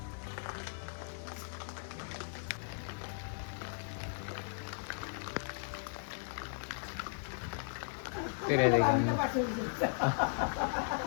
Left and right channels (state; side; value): silent; right; digital silence